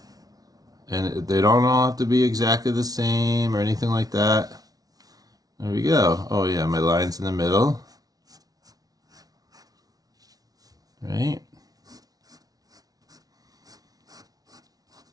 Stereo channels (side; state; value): left; late; 0.18 ms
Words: And they don't all have to be exactly the same or anything like that. There we go. Oh yeah, my line's in the middle. Right?